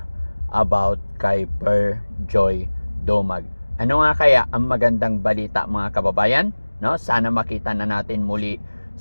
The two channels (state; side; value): inverted; both; correlation -1.00